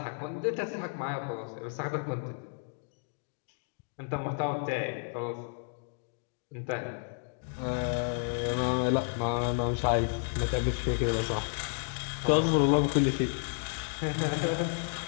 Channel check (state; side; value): silent; right; 57 dB below the other